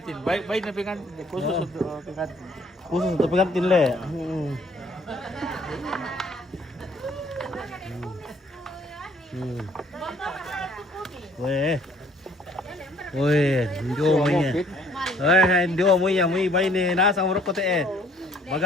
Baik na pengantin. Khusus untuk pengantin. Khusus untuk pengantin le. Weh. Weh, ndio mo niya. Ndio mo niya, mo bay ni nasa urok ko te.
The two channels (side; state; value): both; normal; correlation 0.59